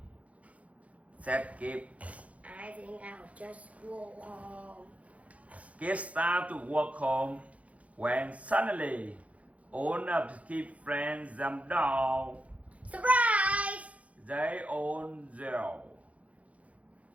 Said Kip. I think I'll just go home. Kip started to walk home when suddenly all of Kip's friends jumped down. Surprise! They all yelled.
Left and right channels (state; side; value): late; left; 0.066 ms